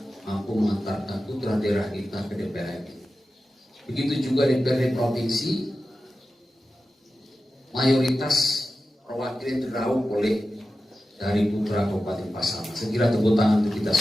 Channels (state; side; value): normal; both; correlation 0.93